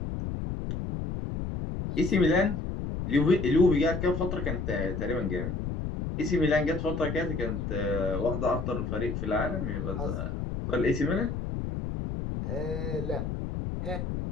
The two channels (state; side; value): noise; left; rumble, 3 dB below the sound